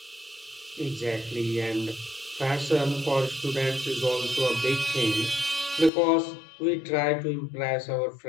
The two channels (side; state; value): right; drops out; at 5.9 s